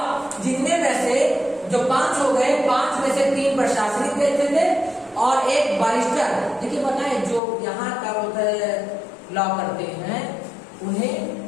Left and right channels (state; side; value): drops out; right; at 7.4 s